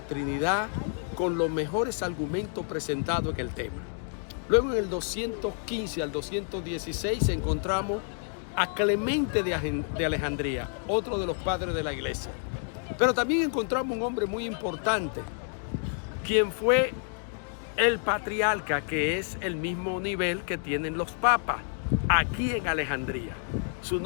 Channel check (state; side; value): silent; right; 59 dB below the other